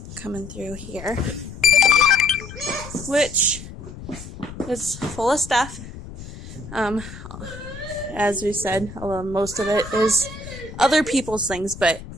coming through here, which is full of stuff. As we said, most of it is other people's things,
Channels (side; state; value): left; noise; rumble, 13 dB below the sound